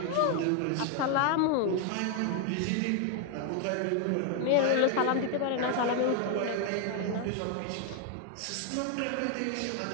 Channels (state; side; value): different; both; correlation 0.00